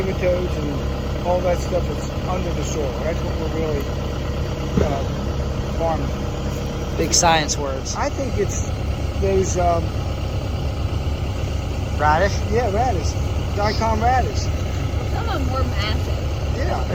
and all that stuff that's under the soil. That's what we're really farming. Big science words. I think it's those radish. Yeah, radish. Daikon radish. Some of them were massive. Yeah.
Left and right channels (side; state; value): both; identical; correlation 1.00